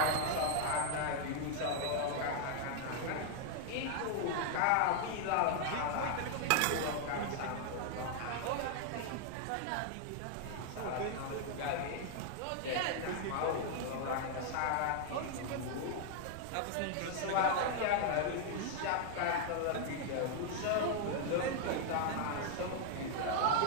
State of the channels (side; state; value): both; different; correlation 0.00